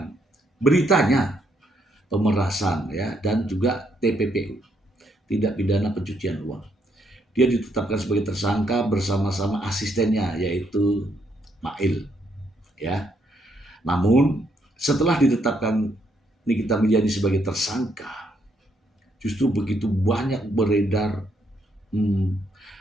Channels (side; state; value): both; normal; correlation 0.74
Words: Beritanya pemerasan ya, dan juga TPPU, tidak pidana pencucian uang. Dia ditetapkan sebagai tersangka bersama-sama asistennya yaitu Mail ya. Namun setelah ditetapkan Nikita Mirzani sebagai tersangka, justru begitu banyak beredar